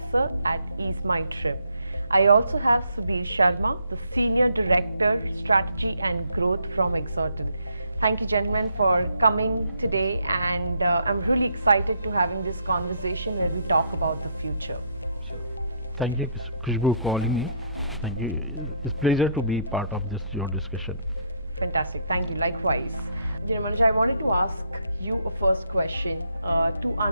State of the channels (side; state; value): both; inverted; correlation -0.71